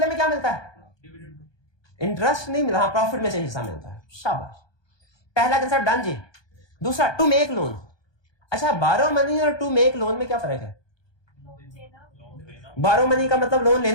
में क्या मिलता है? इंटरेस्ट नहीं मिला, हाँ प्रॉफिट में से हिस्सा मिलता है। शाबाश, पहला कंसेप्ट डन जी। दूसरा टू मेक लोन। अच्छा, बारो मनी और टू मेक लोन में क्या फर्क है? बारो मनी का मतलब लोन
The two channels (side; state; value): right; late; 1.2 ms